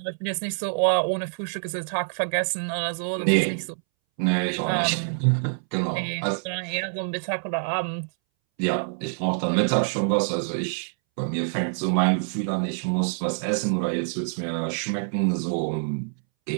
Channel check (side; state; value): left; silent; 61 dB below the other